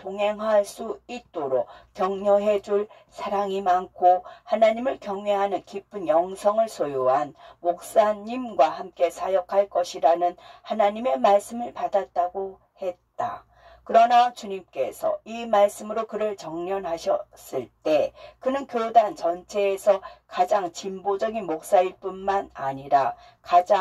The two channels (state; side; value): identical; both; correlation 1.00